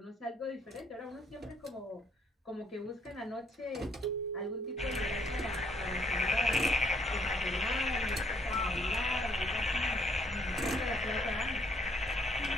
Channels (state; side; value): normal; both; correlation 0.66